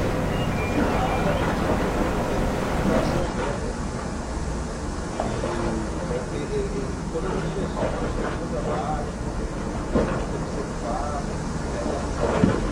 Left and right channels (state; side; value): identical; both; correlation 1.00